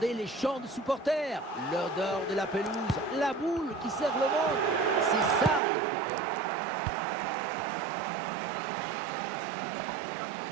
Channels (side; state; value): left; drops out; at 5.6 s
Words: les chants de supporters, l'odeur de la pelouse, la boule qui serre le monde. C'est ça le football.